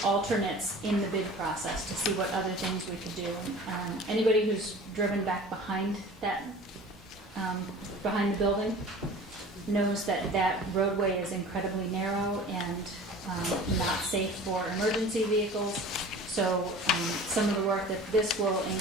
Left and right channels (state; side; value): normal; both; correlation 0.42